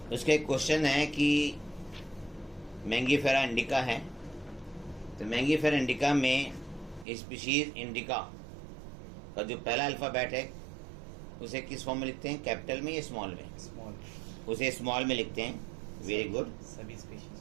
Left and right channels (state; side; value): drops out; left; at 7.1 s